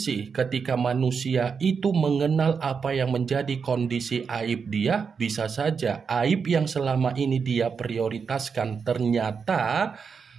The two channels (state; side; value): quieter; left; 5.9 dB